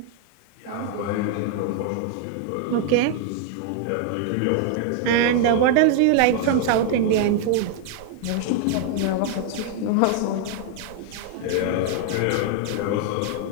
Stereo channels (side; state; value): both; different; correlation 0.00